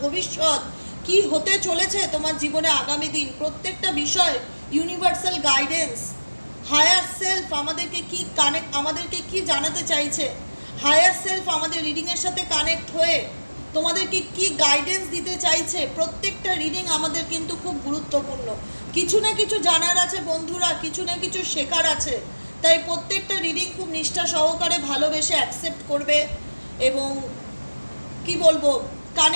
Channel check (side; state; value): both; inverted; correlation -1.00